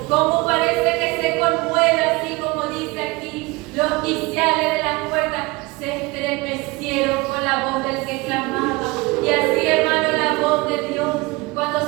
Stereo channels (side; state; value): left; quieter; 24.0 dB